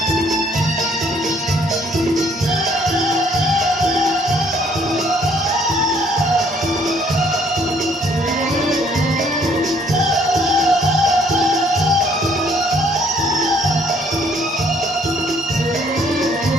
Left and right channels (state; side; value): normal; both; correlation 0.63